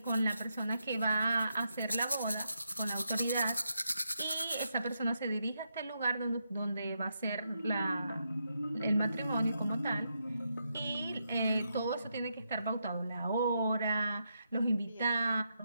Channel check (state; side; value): inverted; both; correlation -0.82